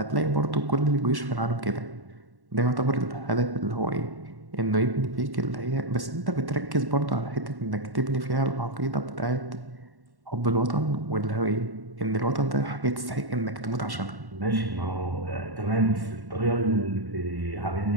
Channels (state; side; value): late; left; 1.1 ms